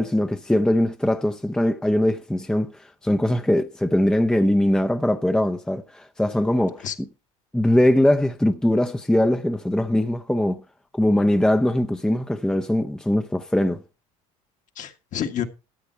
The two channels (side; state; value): both; normal; correlation 0.97